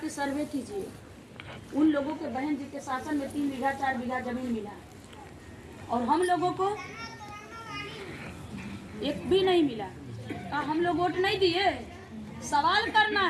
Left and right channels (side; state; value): both; identical; correlation 1.00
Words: सर्वे कीजिए, उन लोगों के बहन जी के शासन में 3 बीघा 4 बीघा जमीन मिला, और हम लोगों को एक भी नहीं मिला। हम लोग वोट नहीं दिए, सवाल करना